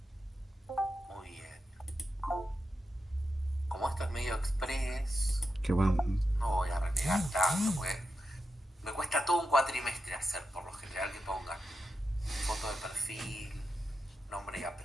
Muy bien. Como esto es medio express, Qué bueno. no voy a renegar tanto, porque me cuesta todo un cuatrimestre hacer, por lo general, que pongan foto de perfil, nombre y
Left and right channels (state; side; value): normal; both; correlation 0.88